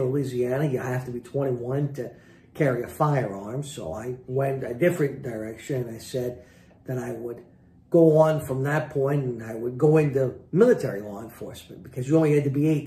Louisiana, you have to be 21 to carry a firearm. So I went a different direction. I said that I would go on from that point and I would go into military law enforcement, because you only had to be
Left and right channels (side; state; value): both; identical; correlation 1.00